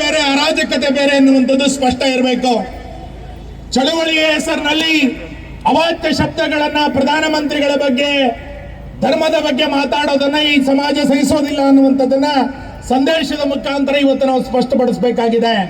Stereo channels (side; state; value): both; identical; correlation 1.00